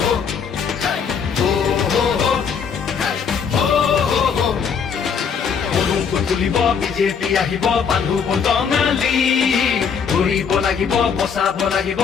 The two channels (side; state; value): right; quieter; 6.6 dB